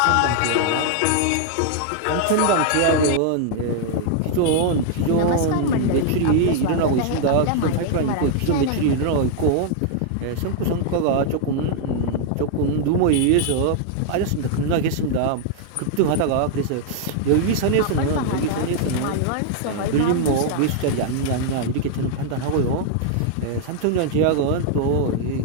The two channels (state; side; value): different; both; correlation 0.00